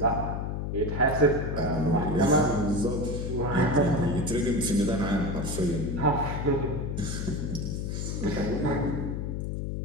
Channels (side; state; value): left; noise; hum, 3 dB below the sound